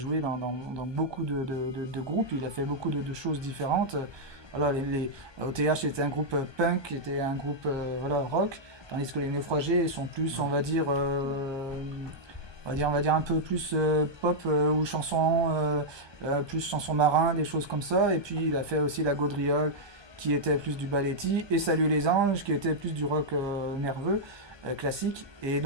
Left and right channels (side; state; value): left; late; 1.2 ms